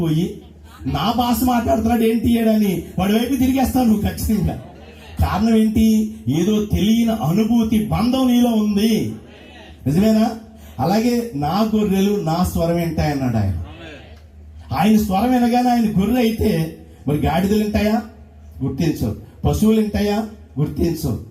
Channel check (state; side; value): identical; both; correlation 1.00